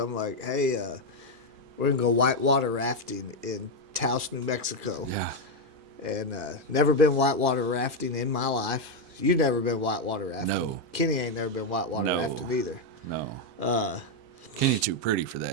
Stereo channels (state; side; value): normal; both; correlation 0.04